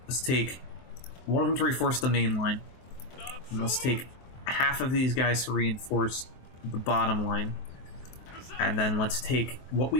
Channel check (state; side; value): late; right; 23 ms